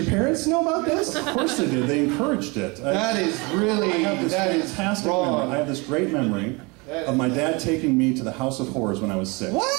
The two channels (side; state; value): left; quieter; 27.7 dB